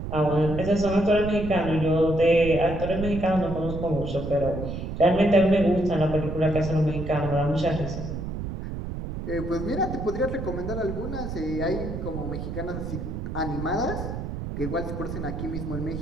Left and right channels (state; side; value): noise; right; rumble, 6 dB below the sound